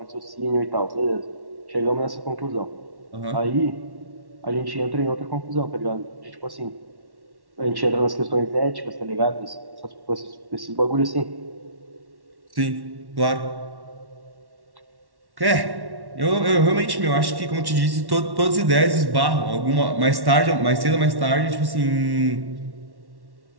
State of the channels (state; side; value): late; left; 1.1 ms